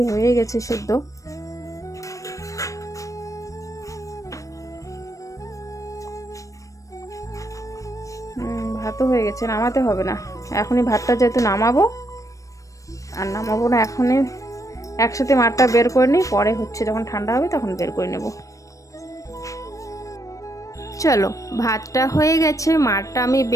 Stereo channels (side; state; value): right; late; 0.16 ms